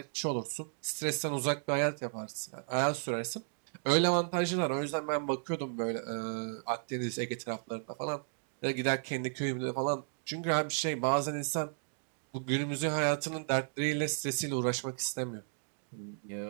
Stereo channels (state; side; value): silent; left; digital silence